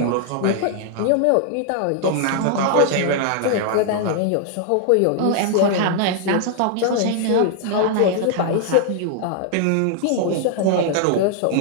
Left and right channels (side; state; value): both; different; correlation 0.00